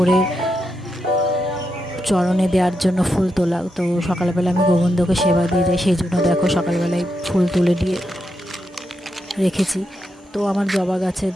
চরণে দেওয়ার জন্য ফুল তোলা। তো সকালবেলা আমি গোবিন্দকে সেবা দিয়ে যাই, সেই জন্য দেখো সকালবেলায় ফুল তুলে দিয়ে রেখেছি। তো আমার জবা গাছে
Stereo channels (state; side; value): normal; both; correlation 0.85